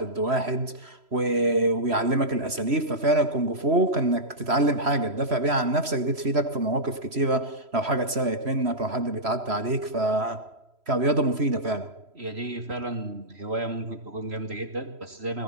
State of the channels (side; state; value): left; late; 3.1 ms